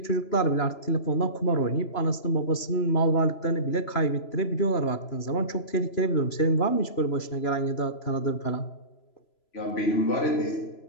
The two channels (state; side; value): late; right; 3.0 ms